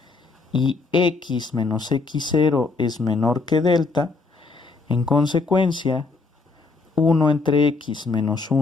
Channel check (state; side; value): quieter; right; 4.0 dB